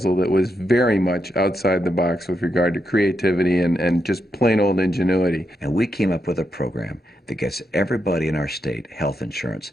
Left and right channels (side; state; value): both; normal; correlation 0.84